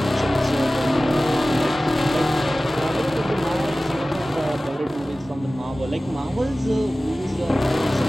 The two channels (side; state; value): both; normal; correlation 0.97